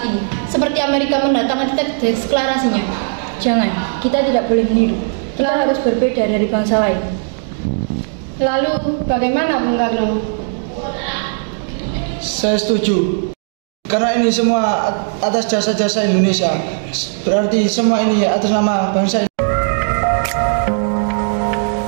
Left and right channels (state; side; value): silent; left; digital silence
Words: ini, seperti Amerika mendatangkan teks deklarasinya? Jangan, kita tidak boleh meniru. Kita harus berbeda dari bangsa lain. Lalu bagaimana Bung Karno? Saya setuju. Karena ini semua atas jasa-jasa Indonesia. Berarti semua ini atas nama bangsa Indonesia.